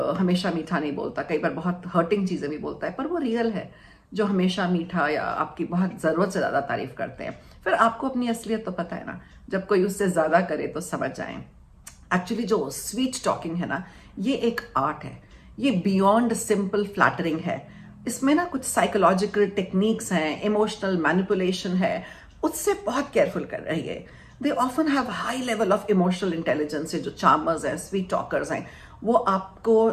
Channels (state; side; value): identical; both; correlation 1.00